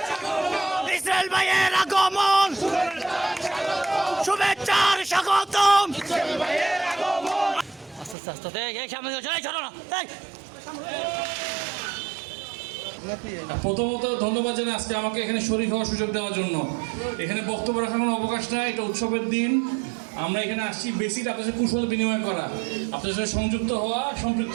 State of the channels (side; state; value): left; drops out; at 8.2 s